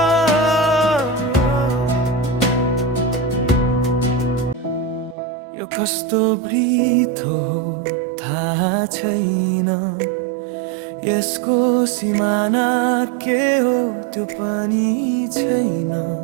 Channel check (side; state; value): left; drops out; at 5.2 s